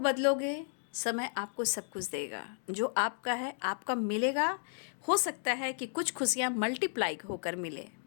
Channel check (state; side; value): silent; right; digital silence